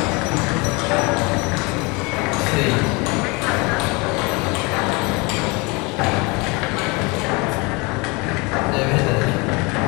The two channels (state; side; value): quieter; right; 27.5 dB